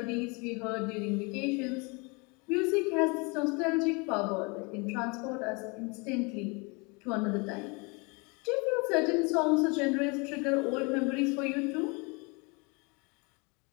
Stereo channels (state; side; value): quieter; right; 29.9 dB